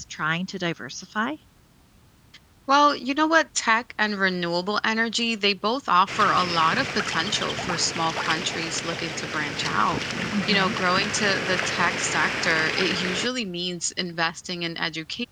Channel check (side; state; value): both; identical; correlation 1.00